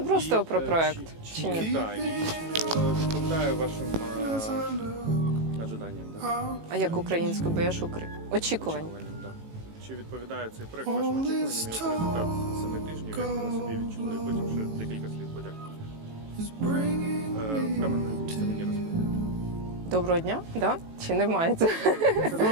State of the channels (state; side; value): late; left; 18 ms